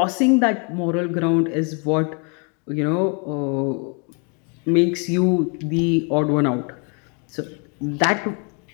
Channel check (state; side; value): quieter; right; 36.0 dB